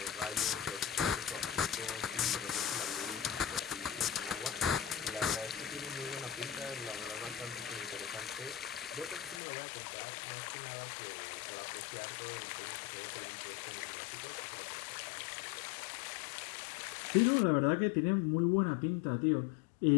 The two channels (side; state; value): right; drops out; at 9.4 s